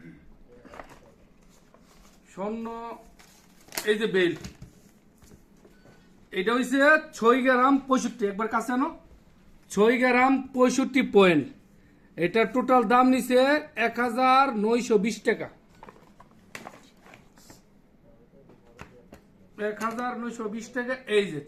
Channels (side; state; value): both; identical; correlation 1.00